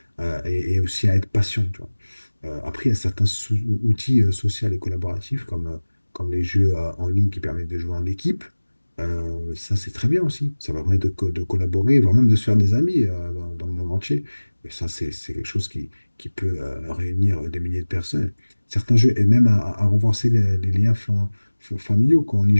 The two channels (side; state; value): both; inverted; correlation -1.00